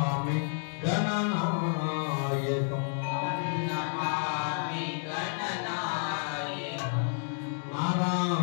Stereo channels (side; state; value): right; silent; digital silence